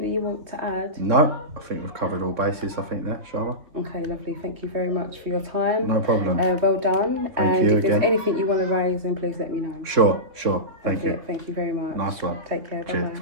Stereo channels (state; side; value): late; left; 3.6 ms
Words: that you want to add? No, I think we've covered all bases, I think, there, Sharma. Okay, lovely. Thank you very much for your time. No problem. Well done. Thank you if there's again. anything you want to raise, then please let me know. Sure. Thank you. Thank you very much. Nice one. Take care. Cheers.